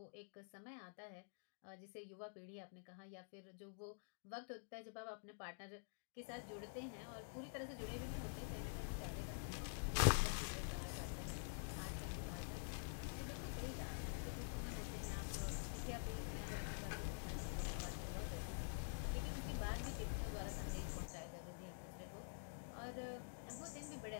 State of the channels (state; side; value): silent; right; digital silence